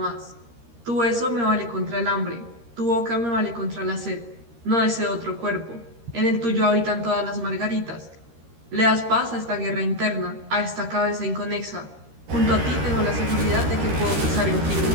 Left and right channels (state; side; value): late; left; 13 ms